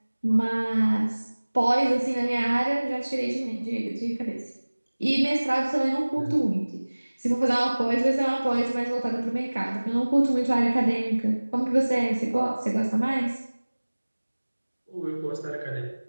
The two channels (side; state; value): both; inverted; correlation -1.00